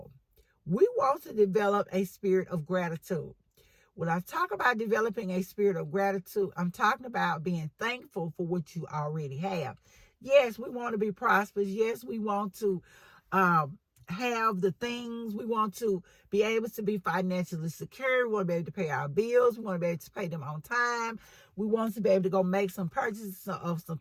We want to develop a spirit of gratitude. When I talk about developing a spirit of gratitude, I'm talking about being thankful for what you already have. Yes, we want to be prosperous. Yes, we want to have the things. We want to be able to be financially secure. We want to be able to pay our bills. We want to be able to pay them on time. We want to be able to go make some purchases of some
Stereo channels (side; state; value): both; identical; correlation 1.00